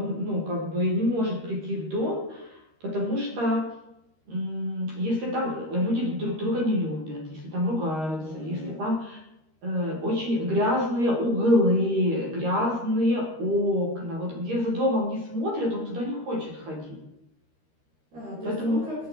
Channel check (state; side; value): late; left; 13 ms